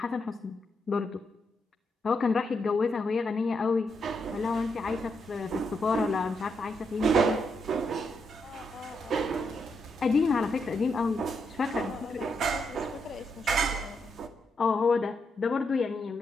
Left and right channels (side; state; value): both; normal; correlation 0.80